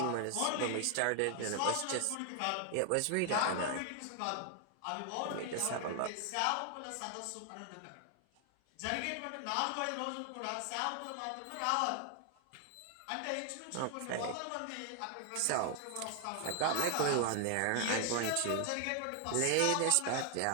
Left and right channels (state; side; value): different; both; correlation 0.00